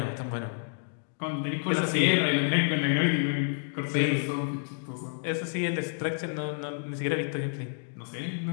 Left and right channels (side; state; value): right; silent; digital silence